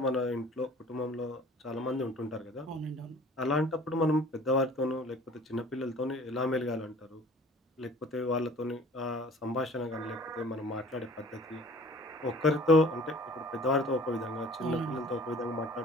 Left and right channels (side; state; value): both; normal; correlation 0.49